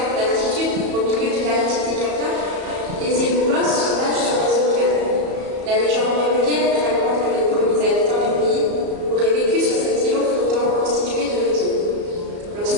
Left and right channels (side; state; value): left; late; 34 ms